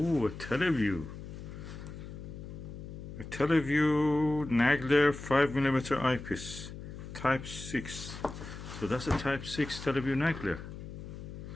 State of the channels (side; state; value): left; noise; hum, 11 dB below the sound